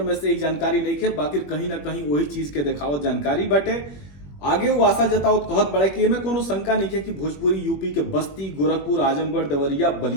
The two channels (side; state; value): right; late; 21 ms